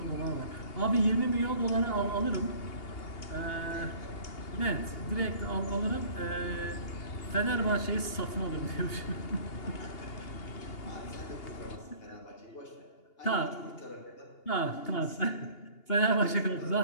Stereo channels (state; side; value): late; right; 2.8 ms